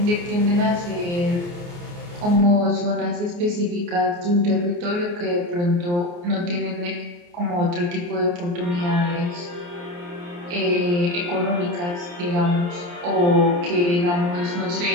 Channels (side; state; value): left; late; 29 ms